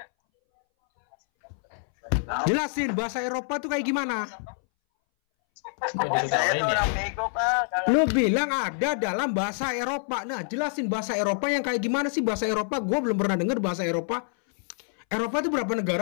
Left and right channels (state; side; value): silent; right; 61 dB below the other